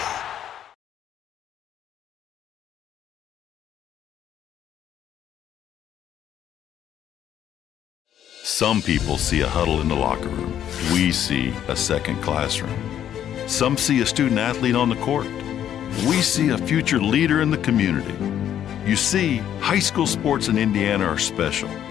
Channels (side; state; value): right; quieter; 10.4 dB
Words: Some people see a huddle in the locker room. We see a second classroom. Some see a student athlete on the court. We see a future leader in the community. You see, high school sports in Indiana are special.